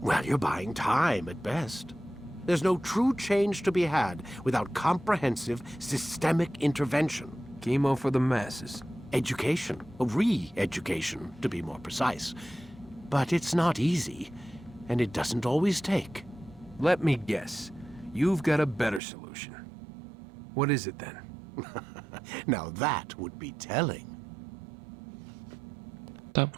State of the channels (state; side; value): drops out; left; at 19.0 s